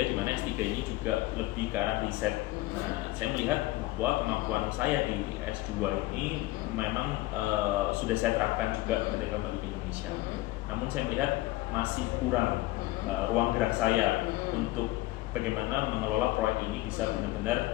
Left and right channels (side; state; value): right; quieter; 18.4 dB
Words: mana S3 ini juga lebih ke arah riset. Nah, saya melihat bahwa kemampuan saya di S2 ini memang sudah saya terapkan juga ketika kembali ke Indonesia. Namun saya melihat masih kurang ruang gerak saya untuk bagaimana mengelola proyek ini bisa